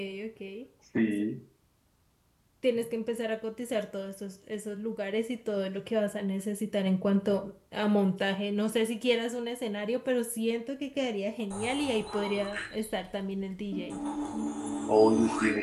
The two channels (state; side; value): identical; both; correlation 1.00